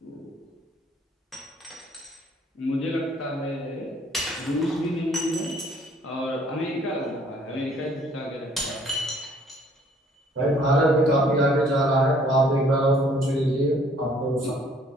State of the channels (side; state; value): both; normal; correlation 0.60